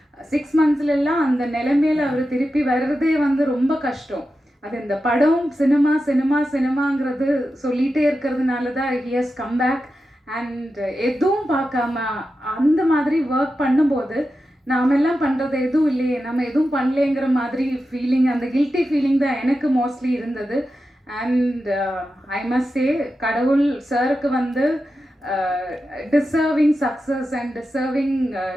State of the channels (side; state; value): both; normal; correlation 0.91